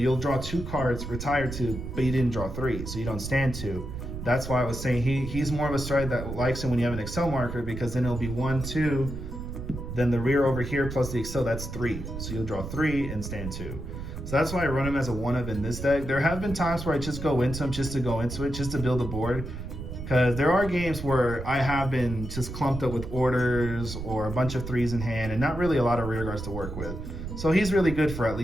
draw 2 cards, retire 2, but you didn't draw 3, so you don't stand 2. That's why I was saying he's more of a stride that likes it when you have an Excel marker because then it'll be 1, 2, then the rear over here plus the Excel, that's 3. So you'll draw 3 and stand 2. So that's why I run him as a 1 of in this deck. There have been times where I just go into him just to go into it, just to build a board. Because there are games where I have been just clumped up with orders or a bunch of 3s in hand and not really a lot of rear guards to work with. So he's really good for at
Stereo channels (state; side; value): noise; right; rumble, 7 dB below the sound